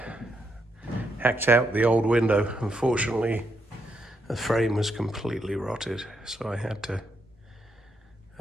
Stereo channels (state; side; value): normal; both; correlation 0.79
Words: hacked out the old window. Unfortunately, the frame was completely rotted, so I had to